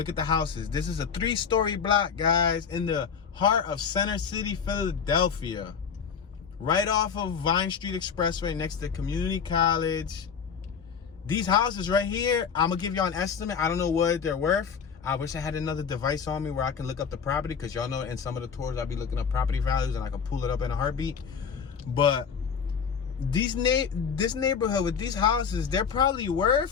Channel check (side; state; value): right; quieter; 6.6 dB